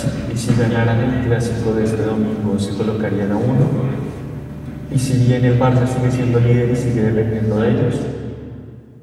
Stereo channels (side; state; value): both; identical; correlation 1.00